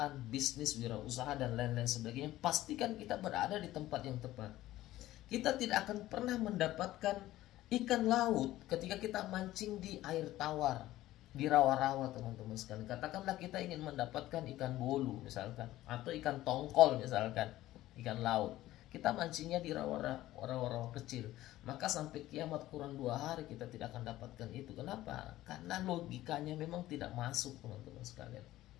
bisnis, wirausaha, dan lain-lain sebagainya. Pastikan kita berada di tempat yang tepat. Kita tidak akan pernah mendapatkan ikan laut ketika kita mancing di air tawar, di rawa-rawa teman-teman sekalian. Katakanlah kita ingin mendapatkan ikan bolu misalkan, atau ikan tongkol misalkan, ikan laut. Kita mancingnya di rawa-rawa kecil, maka sampai kiamat kurang 2 hari kita tidak akan dapatkan itu. Kenapa? Karena logikanya memang tidak masuk teman-teman sekalian.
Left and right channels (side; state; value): right; quieter; 15.4 dB